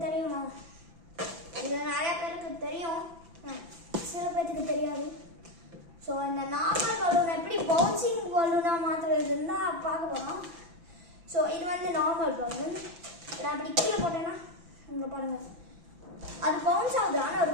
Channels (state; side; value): late; left; 5.9 ms